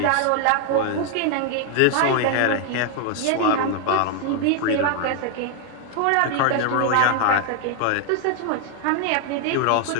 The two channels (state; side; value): different; both; correlation 0.00